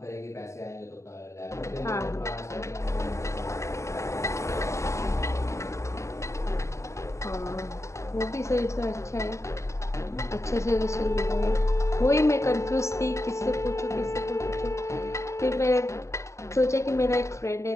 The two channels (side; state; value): right; late; 0.14 ms